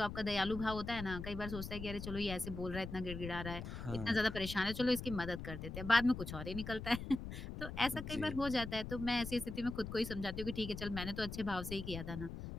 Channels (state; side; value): noise; left; rumble, 7 dB below the sound